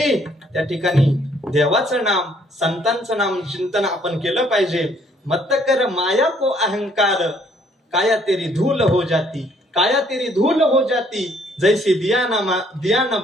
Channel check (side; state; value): both; normal; correlation 0.64